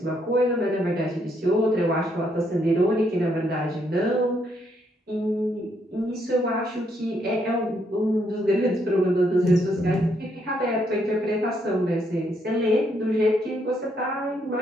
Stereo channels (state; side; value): normal; both; correlation 0.74